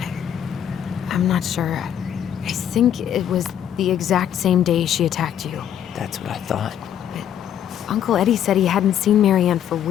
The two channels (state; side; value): quieter; right; 9.8 dB